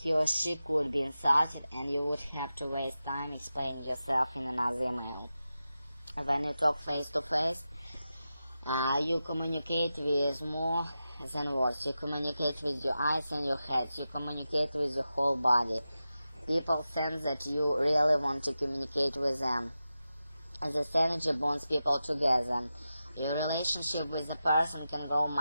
He or she could be insulted, and you would have to waste time explaining yourself in another email. When you talk face-to-face, you communicate with more than words. You communicate with your eyes and your head. You communicate with your whole body. People sense that you really want to communicate with them. This energy bonds people together. Your relationship with the person can grow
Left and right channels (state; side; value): inverted; both; correlation -0.92